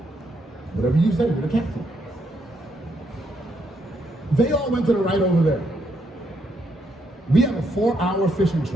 Whatever you say, you're the captain. They all went to the right over there. We have a 4-hour fishing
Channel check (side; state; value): both; normal; correlation 0.76